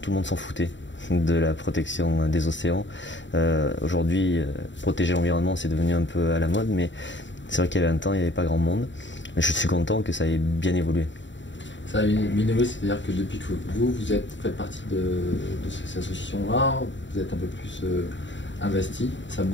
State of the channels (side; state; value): right; late; 0.54 ms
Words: le monde s'en foutait de la protection des océans. Aujourd'hui, protéger l'environnement, c'est devenu un peu à la mode, mais c'est vrai qu'il y a 20 ans, il n'y avait pas grand monde. Mais je suis content que ça ait bien évolué. Ça a bien évolué, c'est-à-dire que depuis que vous faites partie de cette association-là, vous êtes un peu plus investi, ça